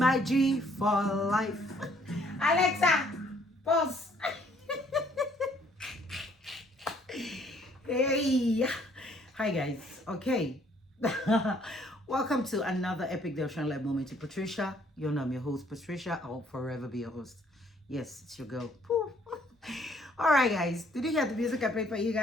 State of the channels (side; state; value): both; normal; correlation 0.64